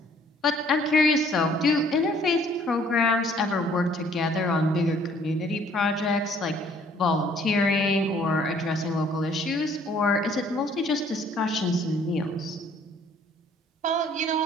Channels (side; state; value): both; normal; correlation 0.59